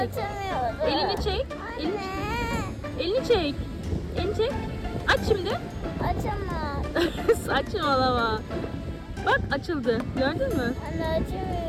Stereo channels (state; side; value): identical; both; correlation 1.00